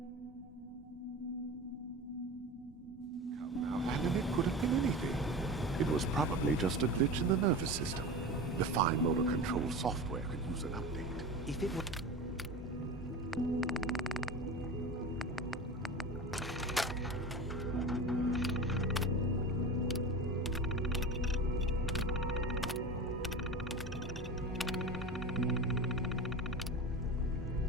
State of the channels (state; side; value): normal; both; correlation 0.29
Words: Now, Landon, it could have been anything. It was probably just a glitch in the nervous system. The fine motor control software could use an update. If it were...